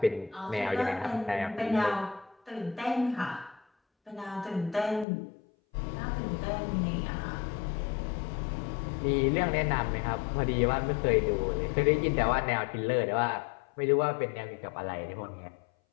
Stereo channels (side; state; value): right; drops out; at 5.1 s